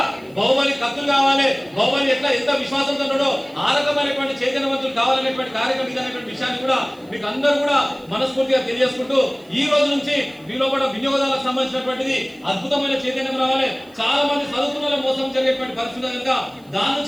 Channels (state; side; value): noise; right; hiss, 30 dB below the sound